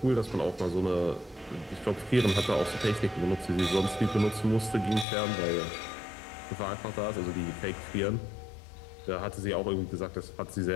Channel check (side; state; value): right; drops out; at 5.1 s